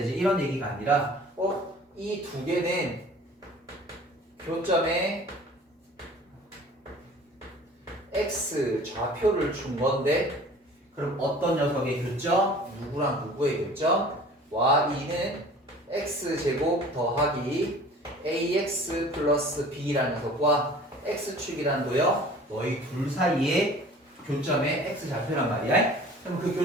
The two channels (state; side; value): normal; both; correlation 0.46